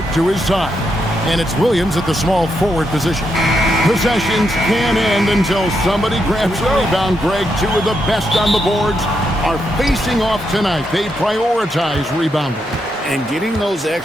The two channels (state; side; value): normal; both; correlation 0.81